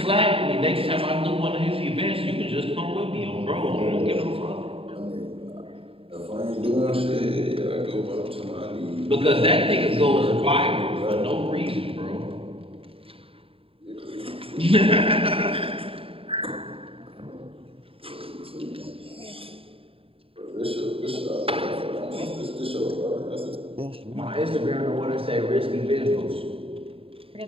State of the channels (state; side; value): late; left; 0.27 ms